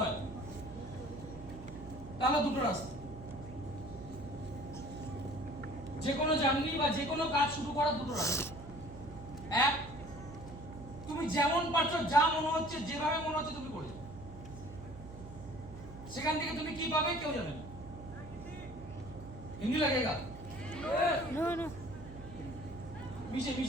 তাহলে দুটো রাস্তা। যে কোনো জার্নি বা যে কোনো কাজ শুরু করার দুটো রাস্তা। এক, তুমি যেমন পারছো, যা মনে হচ্ছে, যেভাবে মনে হচ্ছে তুমি করে, সেখান থেকে তুমি কি পাবে কেউ জানে না। হিন্দি लगेगा? नो नो पीछे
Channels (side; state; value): right; noise; hum, 14 dB below the sound